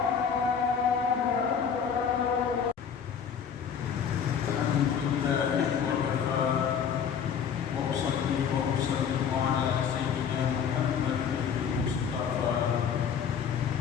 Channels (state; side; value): quieter; right; 7.4 dB